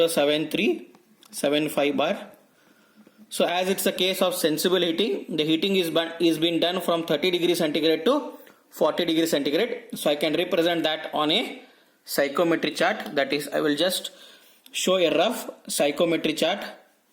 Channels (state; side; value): identical; both; correlation 1.00